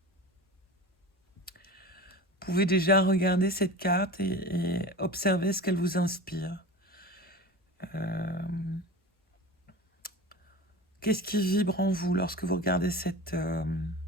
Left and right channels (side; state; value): both; normal; correlation 0.33